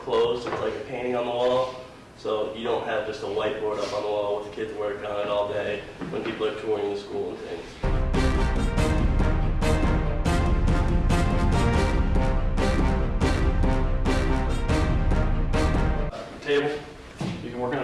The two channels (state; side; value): identical; both; correlation 1.00